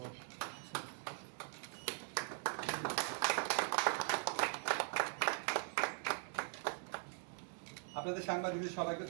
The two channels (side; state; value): left; silent; 50 dB below the other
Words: আপনাদের সাংবাদিকদের সবাইকে